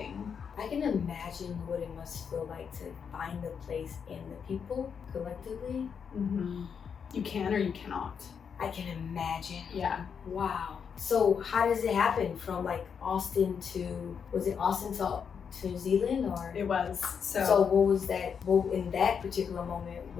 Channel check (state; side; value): quieter; right; 6.8 dB